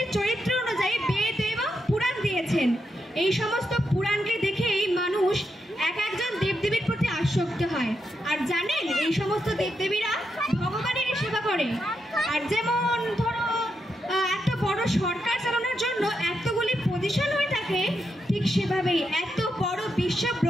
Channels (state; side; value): normal; both; correlation 0.84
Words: চরিত্র অনুযায়ী বেদ এবং পুরাণ দিয়েছেন। এই সমস্ত পুরাণকে দেখেই মানুষ এক একজন দেবদেবীর প্রতি আসক্ত হয়। আর জানেন, এই সমস্ত দেবদেবীরা ভগবানের সেবা করে। আর যেমন ধরো একটা বড় সরকার চালানোর জন্য এতগুলি পজিশন হয়ে থাকে, ঠিক সেভাবেই এত বড় বিশ্ব